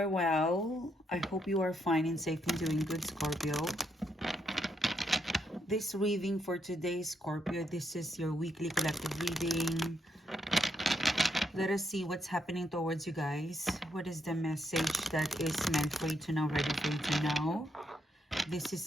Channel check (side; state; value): both; normal; correlation 0.77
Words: well. I hope you are fine and safe and doing good, Scorpio. This reading for today, Scorpio, this is your weekly collective reading. Let us see what's happening towards you guys. What is the message that is meant for you to know, ready for you to know? This